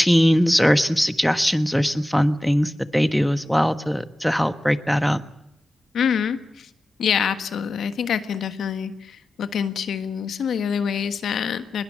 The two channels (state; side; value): normal; both; correlation 0.94